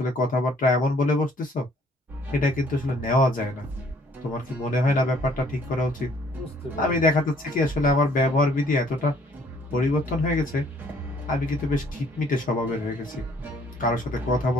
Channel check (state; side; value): normal; both; correlation 0.61